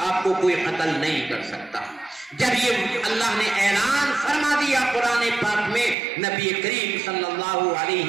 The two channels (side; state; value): left; drops out; at 6.0 s